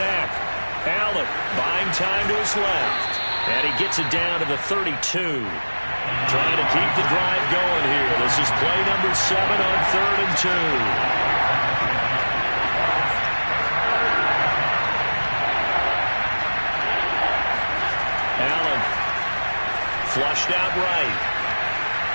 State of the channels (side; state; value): both; inverted; correlation -1.00